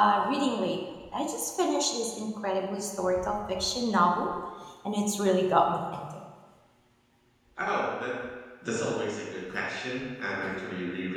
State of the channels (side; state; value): both; identical; correlation 1.00